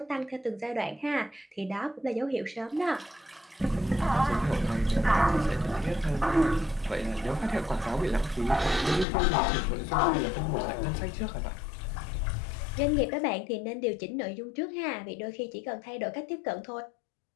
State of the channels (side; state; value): right; drops out; at 9.1 s